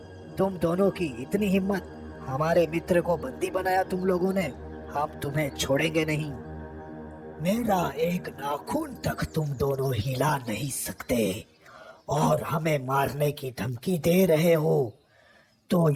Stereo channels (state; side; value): identical; both; correlation 1.00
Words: तुम दोनों की इतनी हिम्मत? हमारे मित्र को बंदी बनाया तुम लोगों ने। हम तुम्हें छोड़ेंगे नहीं। मेरा एक नाखून तक तुम दोनों हिला नहीं सकते और हमें मारने की धमकी दे रहे हो, तो